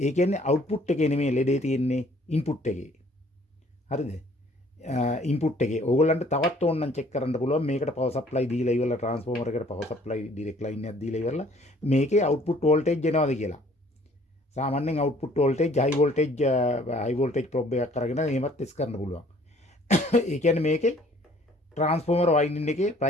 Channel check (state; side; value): normal; both; correlation 0.58